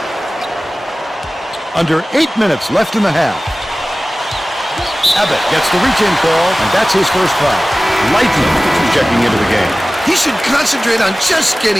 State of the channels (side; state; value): both; normal; correlation 0.97